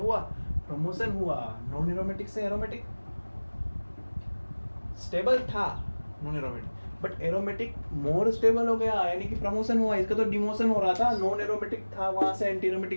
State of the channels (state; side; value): inverted; both; correlation -1.00